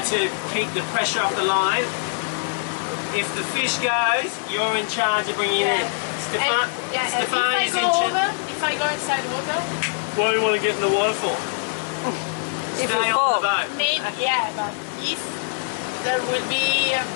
to keep the pressure off the line. If the fish goes, you're in charge of bringing it in. Stefania's in charge. If I go inside the water? What do you want to get in the water for? Stay on the boat. Maybe, yeah, but if there will be a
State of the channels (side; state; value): right; silent; digital silence